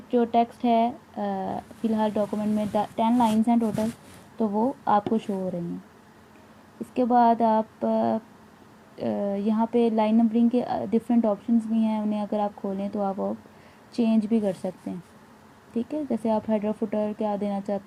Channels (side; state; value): both; identical; correlation 1.00